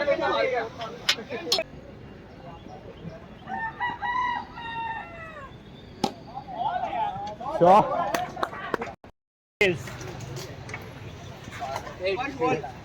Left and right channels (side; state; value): both; identical; correlation 1.00